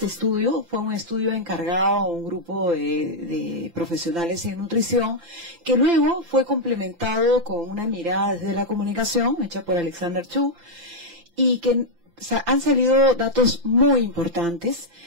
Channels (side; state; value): left; late; 5.8 ms